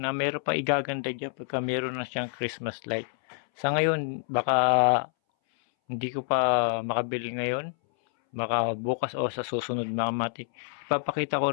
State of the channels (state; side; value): silent; right; 60 dB below the other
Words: meron pa igaganda dyan pagka meron na siyang Christmas light. Sa ngayon, baka hindi ko pa makabili ngayon, baka bukas o sa susunod mga matik. Ipapakita